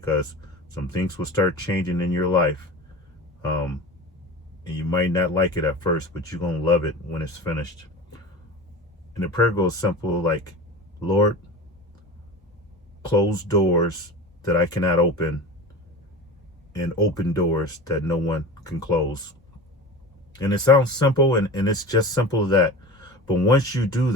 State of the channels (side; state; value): both; normal; correlation 0.32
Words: some things will start changing in your life. And you might not like it at first, but you're going to love it when it's finished. And the prayer goes simple, like, Lord, close doors that I cannot open, and open doors that no one can close. And it sounds simple, and it's just simple as that. But once you do